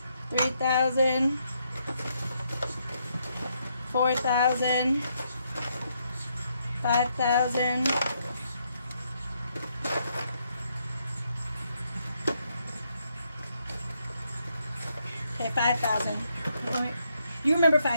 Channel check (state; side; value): inverted; both; correlation -0.76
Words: 3,000, 4,000, 5,000, 5,000. You remember